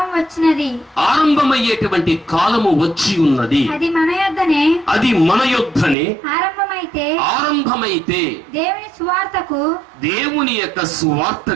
వచ్చినది, ఆరంభమయ్యేటువంటి కాలము వచ్చి ఉన్నది. అది మన యొద్దనే, అది మన యొద్దనే ఆరంభమైతే దేవుని సువార్తకు, దేవుని యొక్క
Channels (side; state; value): left; drops out; at 6.0 s